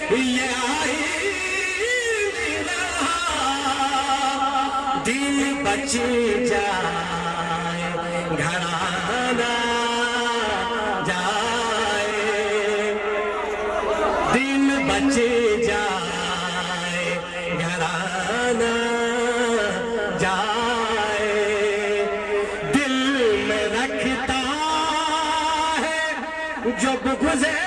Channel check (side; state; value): both; identical; correlation 1.00